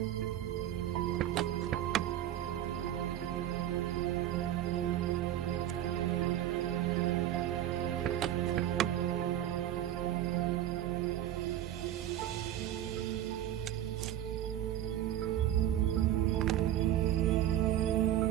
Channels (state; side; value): quieter; left; 12.1 dB